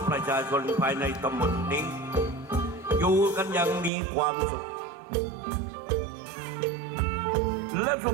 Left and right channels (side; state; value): left; drops out; at 3.9 s